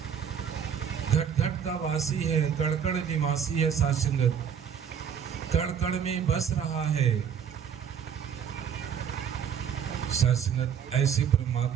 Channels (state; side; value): quieter; left; 7.9 dB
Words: घट घट का वासी है, कण कण निवासी है। सासंगत, कण कण में बस रहा है। सासंगत, ऐसे